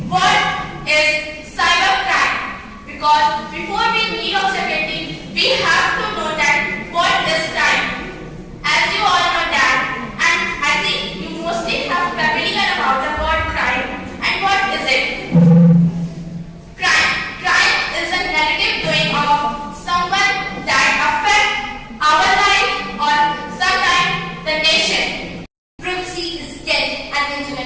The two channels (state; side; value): identical; both; correlation 1.00